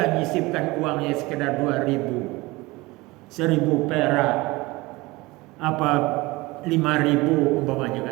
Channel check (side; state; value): left; quieter; 22.0 dB